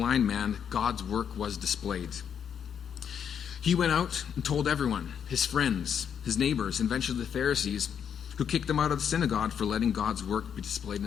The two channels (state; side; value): quieter; right; 8.0 dB